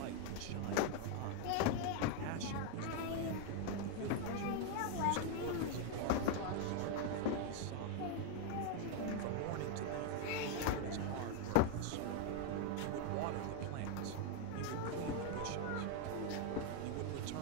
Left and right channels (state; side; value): different; both; correlation 0.01